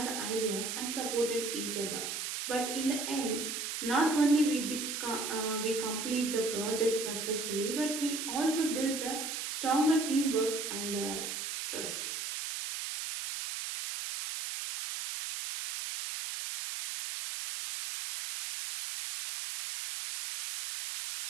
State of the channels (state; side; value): noise; right; hiss, 4 dB below the sound